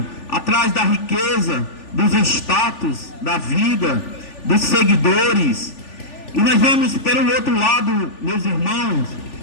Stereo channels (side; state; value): right; late; 3.4 ms